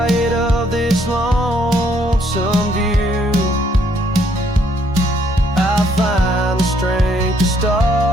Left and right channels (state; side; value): normal; both; correlation 0.68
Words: of this lonesome view, I find the strength to